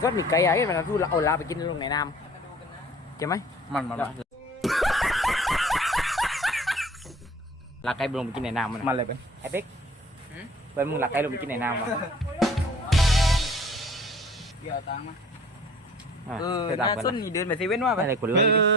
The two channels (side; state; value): both; normal; correlation 0.49